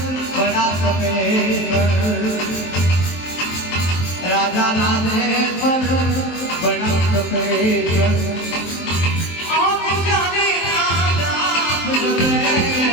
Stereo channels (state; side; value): late; right; 23 ms